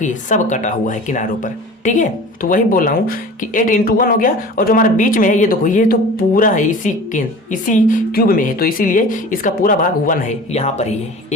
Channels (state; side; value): normal; both; correlation 0.39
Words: सब कटा हुआ है किनारों पर, ठीक है। तो वही बोल रहा हूँ कि 8 × 1 हो गया, और जो हमारे बीच में है ये देखो ये तो पूरा है इसी क्यूब में है, तो इसीलिए इसका पूरा भाग 1 है, यहाँ पर ही है